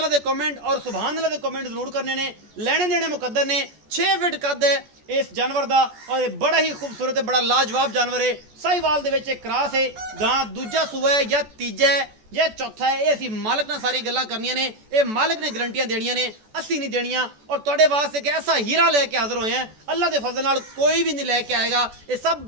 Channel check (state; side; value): late; left; 14 ms